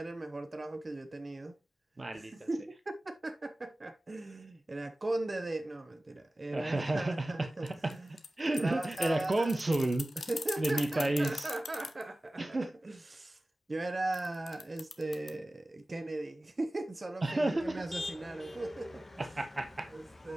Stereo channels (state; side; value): normal; both; correlation 0.97